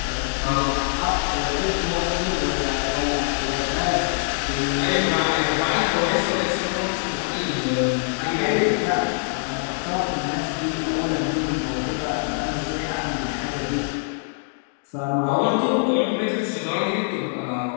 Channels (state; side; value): silent; right; digital silence